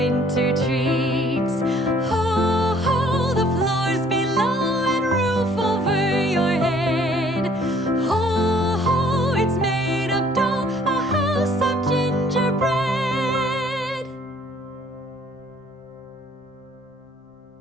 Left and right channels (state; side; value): normal; both; correlation 0.59